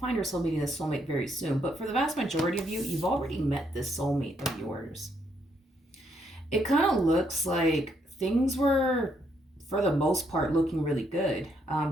find yourself meeting this soulmate very soon. But for the vast majority of you, you've already met this soulmate of yours. It kind of looks like things were, for the most part, looking really good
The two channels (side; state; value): both; normal; correlation 0.74